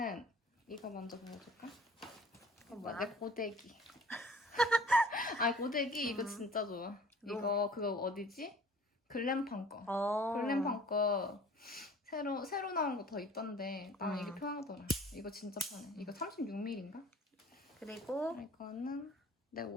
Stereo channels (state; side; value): normal; both; correlation 0.49